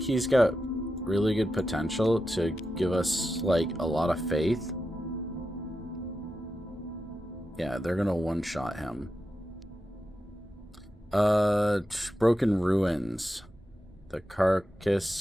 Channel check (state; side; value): normal; both; correlation 0.89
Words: he's got really good potential to give us like a lot of faith. Yeah, they're gonna one-shot him. Broken ruins. The